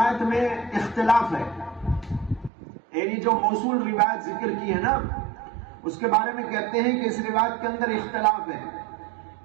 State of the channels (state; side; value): drops out; left; at 2.5 s